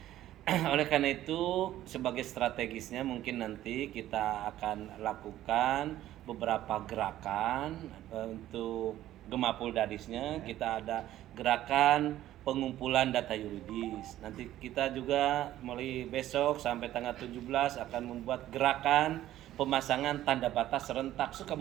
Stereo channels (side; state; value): left; quieter; 13.5 dB